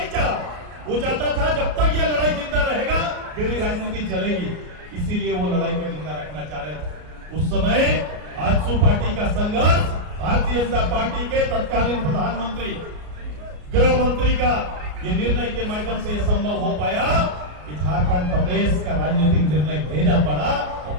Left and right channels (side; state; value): left; late; 33 ms